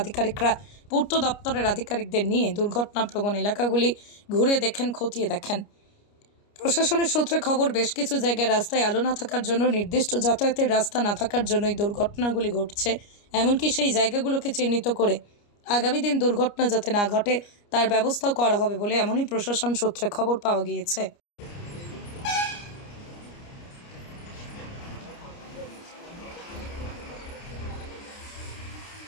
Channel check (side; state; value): right; late; 29 ms